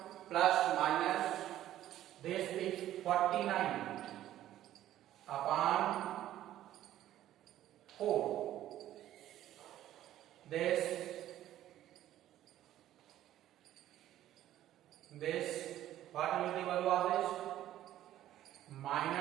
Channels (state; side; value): quieter; left; 12.9 dB